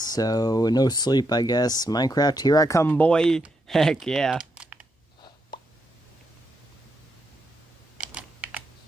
no sleep, I guess. Minecraft, here I come, boy. Heck yeah.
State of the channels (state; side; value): normal; both; correlation 0.81